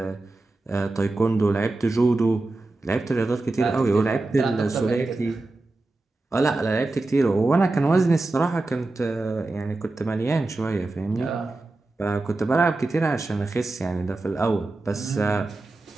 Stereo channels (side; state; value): left; quieter; 3.1 dB